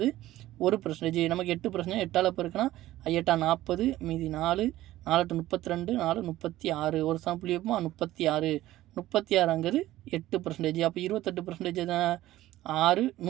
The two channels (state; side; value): quieter; left; 15.4 dB